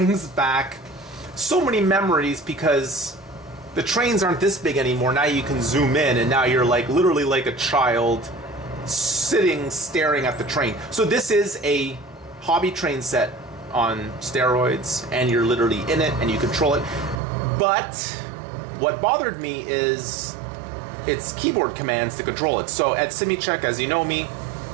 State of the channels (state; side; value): drops out; left; at 17.2 s